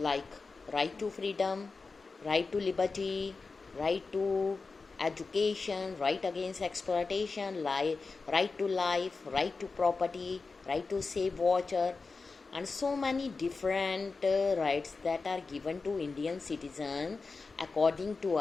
right to freedom, right to liberty, right to education, right against exploitation, right to life, right to property, right to safe water, and so many different rights that are given to Indian citizens according to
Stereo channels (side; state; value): right; quieter; 4.2 dB